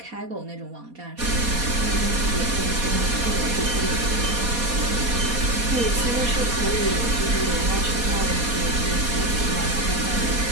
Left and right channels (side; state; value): left; late; 4.2 ms